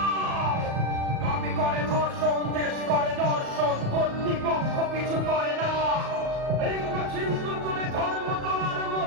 দাবি করে ধর্ষণ, দেশ করে দর্শন, কর্তৃপক্ষ কিছু করে না, লিঙ্গ চিহ্ন করে ধর্ম তোমার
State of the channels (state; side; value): late; left; 37 ms